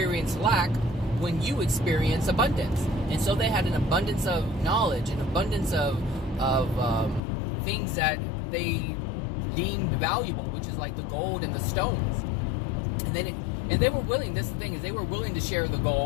lack when you experience abundance. And so they had an abundance of knowledge, an abundance of things that they deemed valuable, which is like the gold and the stones. And they were willing. This is the thing, is they were willing to share the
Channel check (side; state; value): right; drops out; at 7.2 s